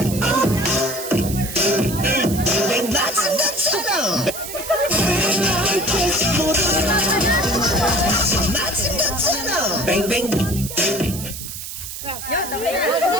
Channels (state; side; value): noise; right; hiss, 9 dB below the sound